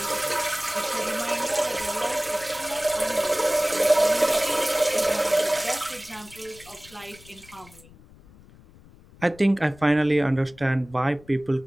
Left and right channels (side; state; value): left; noise; rumble, 24 dB below the sound